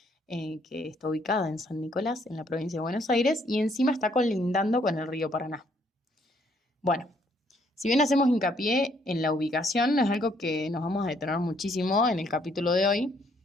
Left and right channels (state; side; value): normal; both; correlation 0.68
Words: que está ubicada en San Nicolás, en la provincia de Buenos Aires, y encima está colindando con el río Paraná. Bueno, si bien hacemos hincapié en la ubicación, es algo que nos vamos a detener muchísimo en el capítulo de hoy,